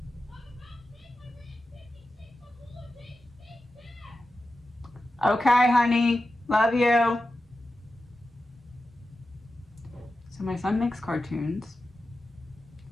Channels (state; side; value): normal; both; correlation 0.92